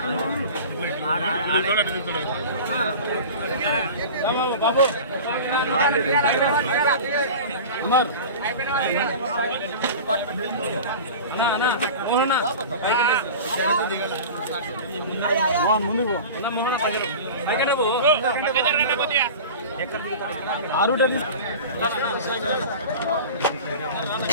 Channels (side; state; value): both; inverted; correlation -0.35